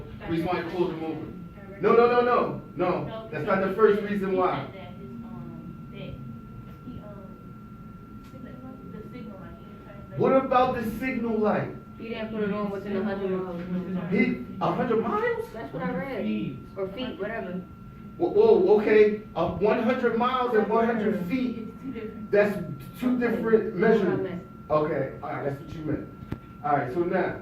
reason why he pulled him over? No. That's not the first reason why. What about the signal light? he didn't put it on within 100 miles. 100 miles? That's what I read. Or feet, whatever. Whoa, okay. 100 miles and 100 feet. That's two different measurements. Okay, all right, that's what you meant. All right, so now,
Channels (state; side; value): identical; both; correlation 1.00